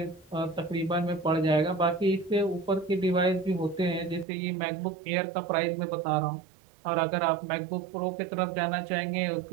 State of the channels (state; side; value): drops out; left; at 4.2 s